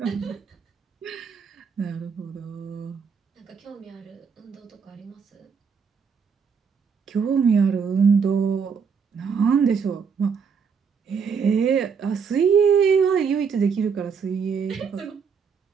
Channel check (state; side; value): quieter; left; 6.1 dB